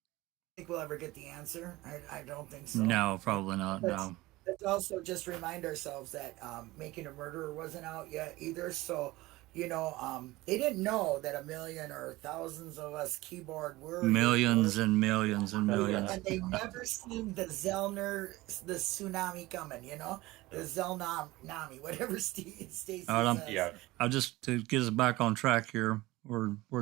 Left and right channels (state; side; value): quieter; left; 19.3 dB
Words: Think we'll ever get the answer? I don't think so. No, probably not. No. Let's also just remind ourselves that Making a Murderer wasn't out yet either. So, they didn't know that a million or thousands of us keyboard warriors. Millions and millions and millions. And they never seen the tsunami coming, the Zelnami, whatever Stacey says. I'll just, to get us back on track here, we're